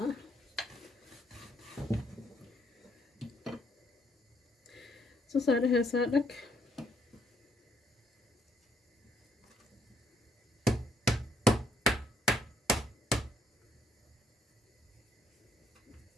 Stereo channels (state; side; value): normal; both; correlation 0.70